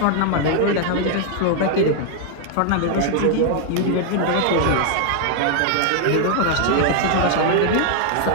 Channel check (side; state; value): both; different; correlation 0.00